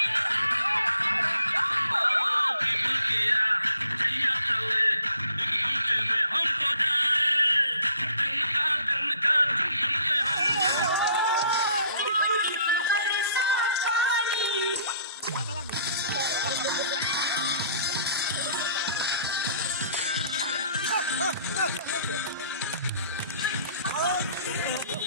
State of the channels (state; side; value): inverted; both; correlation -0.59